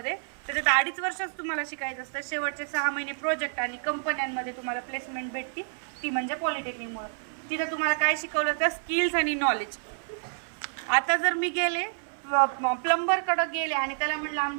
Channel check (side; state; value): left; silent; 59 dB below the other